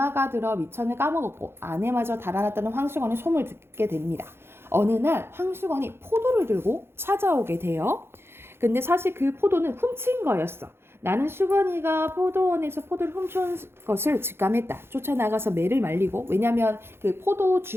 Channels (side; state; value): left; late; 0.12 ms